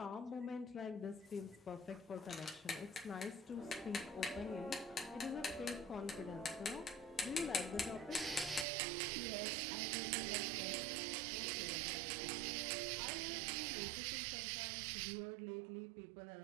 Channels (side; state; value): left; drops out; at 8.7 s